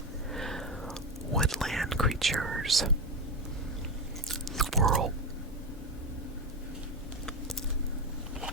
woodland creatures. Squirrel.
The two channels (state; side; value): normal; both; correlation 0.16